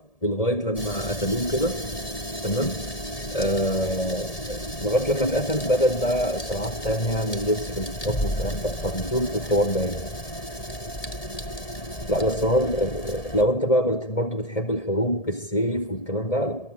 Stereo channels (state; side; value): late; right; 1.7 ms